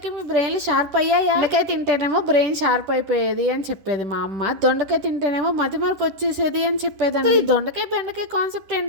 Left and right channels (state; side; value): late; left; 10 ms